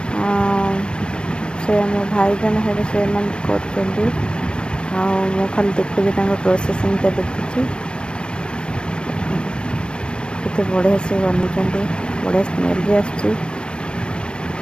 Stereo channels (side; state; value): right; late; 0.052 ms